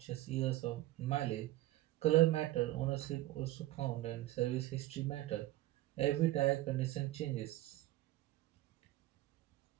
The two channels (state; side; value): quieter; left; 16.3 dB